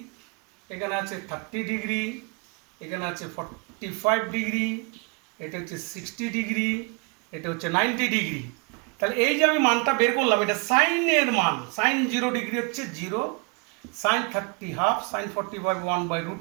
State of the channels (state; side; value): quieter; left; 30.0 dB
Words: এখানে আছে 30 ডিগ্রি, এখানে আছে 45 ডিগ্রি, এটা হচ্ছে 60 ডিগ্রি, এটা হচ্ছে 90 ডিগ্রি। তাহলে এই যে আমি মানটা বের করলাম, এটা সাইনের মান, সাইন 0 ডিগ্রি হচ্ছে 0, সাইন 30 হাফ, সাইন 45